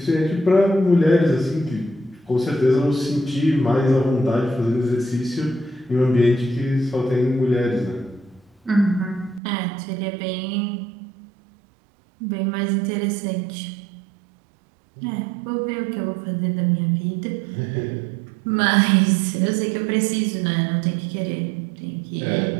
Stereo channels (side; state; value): left; drops out; at 9.4 s